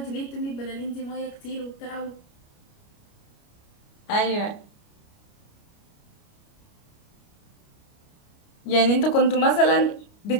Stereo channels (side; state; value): right; late; 29 ms